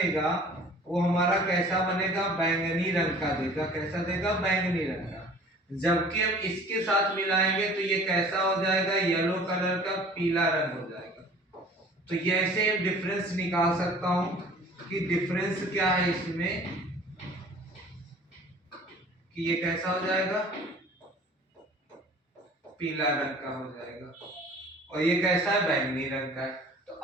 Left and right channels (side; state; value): both; normal; correlation 0.48